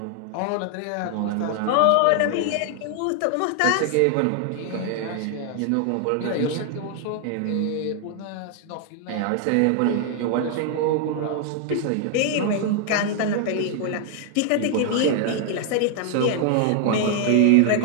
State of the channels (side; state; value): both; different; correlation 0.00